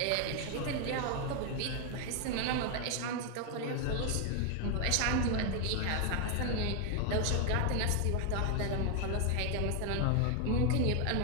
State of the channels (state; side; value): different; both; correlation 0.00